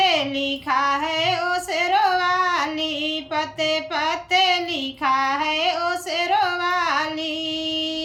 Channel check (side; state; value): both; identical; correlation 1.00